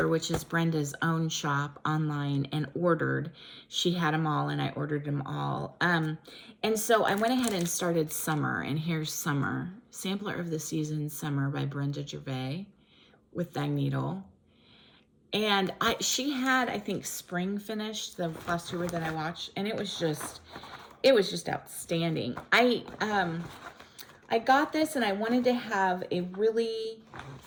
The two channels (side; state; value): both; identical; correlation 1.00